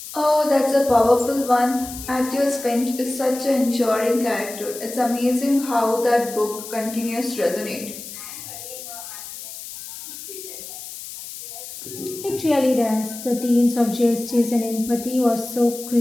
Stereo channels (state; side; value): noise; left; hiss, 12 dB below the sound